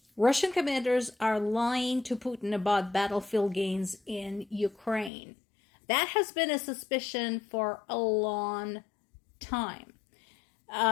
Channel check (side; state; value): right; drops out; at 5.1 s